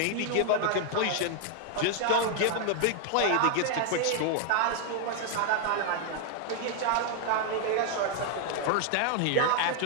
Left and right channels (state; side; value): different; both; correlation 0.00